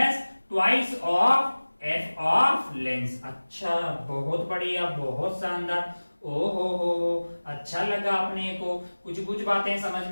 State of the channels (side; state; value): both; inverted; correlation -1.00